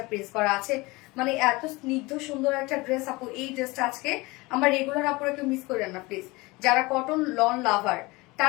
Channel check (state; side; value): quieter; right; 23.1 dB